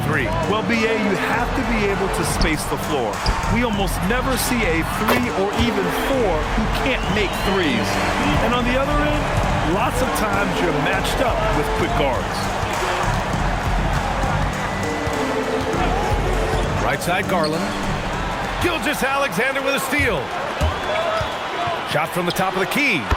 3? Well, BA, you have to be able to space the floor. We almost never see a 3 or even 4 who can't make threes. And on the other end, lots of times you're matched up with quick guards. Right side, Garland. Gilgeous-Alexander with a steal. Shot from the top of the key.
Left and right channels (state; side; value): identical; both; correlation 1.00